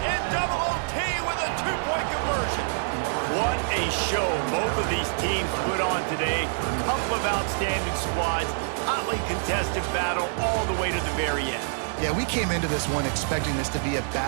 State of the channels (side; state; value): left; silent; 55 dB below the other